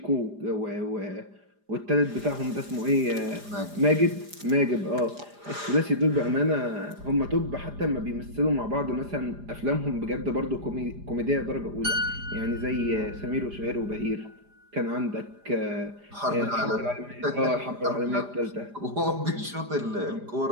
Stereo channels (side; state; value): left; late; 4.9 ms